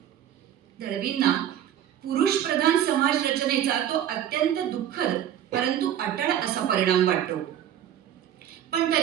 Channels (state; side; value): quieter; left; 10.5 dB